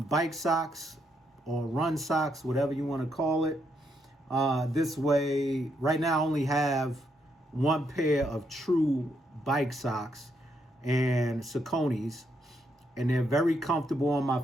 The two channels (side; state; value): both; normal; correlation 0.77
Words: socks or run socks, whatever you want to call it. This way, right now I only have one pair of true bike socks and Sauconys, and they're very comfortable on my